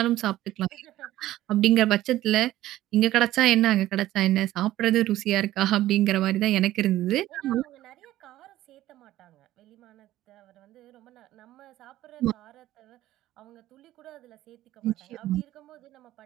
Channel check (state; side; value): quieter; left; 14.7 dB